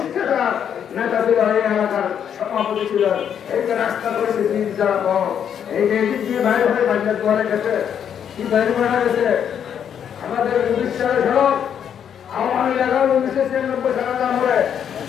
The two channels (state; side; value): quieter; right; 8.6 dB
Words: নেতা ছিল, এই এলাকার সভাপতি ছিল। এই যে রাস্তা করেছে 3 যারা পর, এই যে এদিক দিয়ে বাইরে হয়ে বাজার দোয়ারে গেছে, কি বাইরে বেড়া গেছে। আমাদের 19 সালে সড়ক, আওয়ামী লীগ 1996 সালে আমলে